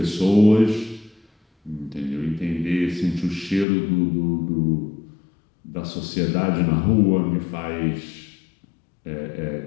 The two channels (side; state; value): right; drops out; at 3.7 s